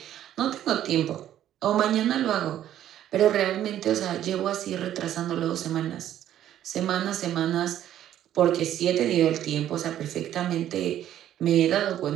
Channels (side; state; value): left; quieter; 11.6 dB